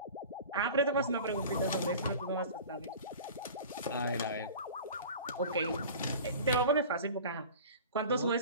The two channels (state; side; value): inverted; both; correlation -0.39